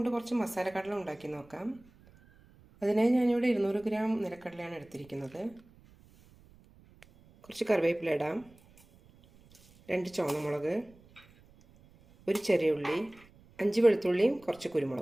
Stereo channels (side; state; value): right; noise; rumble, 27 dB below the sound